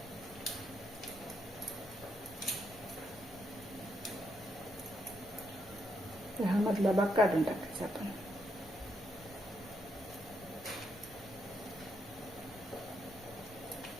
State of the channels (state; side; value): normal; both; correlation 0.78